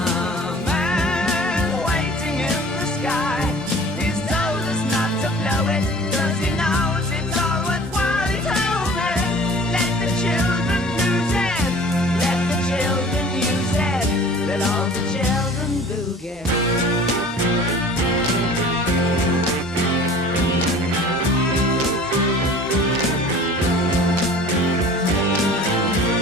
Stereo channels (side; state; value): both; normal; correlation 0.45